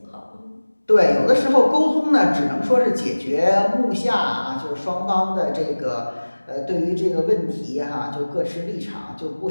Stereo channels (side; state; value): both; inverted; correlation -1.00